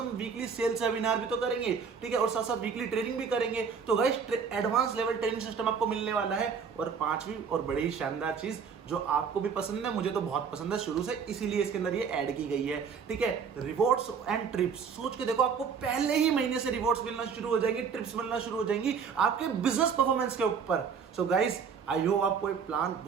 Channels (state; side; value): quieter; left; 6.2 dB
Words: वीकली सेल्स वेबिनार भी तो करेंगे, ठीक है, और साथ साथ वीकली ट्रेनिंग भी करेंगे। तो guys, advance level training system आपको मिलने वाला है। और पांचवी और बड़ी ही शानदार चीज, जो आपको भी पसंद है, मुझे तो बहुत पसंद है शुरू से, इसीलिए इसके अंदर ये ऐड की गई है, ठीक है। Rewards and trips. सोच के देखो, आपको पहले ही महीने से रिवॉर्ड्स मिलना शुरू हो जाएंगी, ट्रिप्स मिलना शुरू हो जाएंगी आपके बिजनेस परफॉर्मेंस के ऊपर। सो गाइस, आई होप आपको ये प्लान